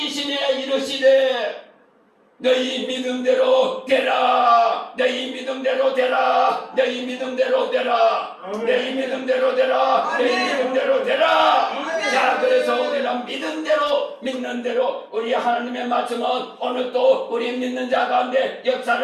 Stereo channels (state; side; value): identical; both; correlation 1.00